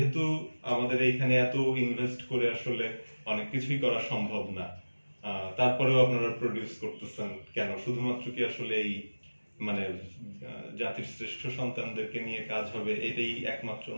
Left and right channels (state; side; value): inverted; both; correlation -1.00